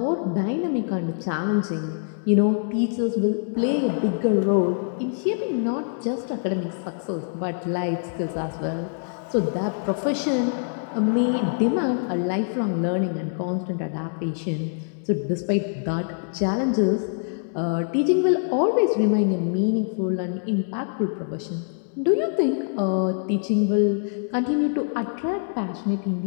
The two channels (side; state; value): right; silent; digital silence